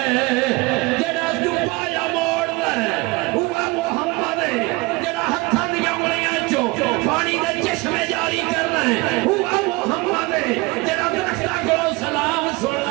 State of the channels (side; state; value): left; quieter; 24.4 dB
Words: جڑا دبایا موڑ رہے ہوا محمد جڑا ہتھاں دی انگلیاں چوں پانی دے چشمے جاری کر رہے ہوا محمد جڑا درختاں کو سلام سن